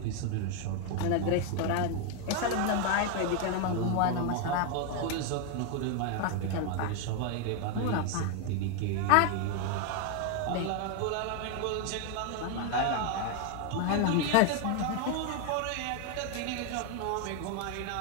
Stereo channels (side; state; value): both; different; correlation 0.00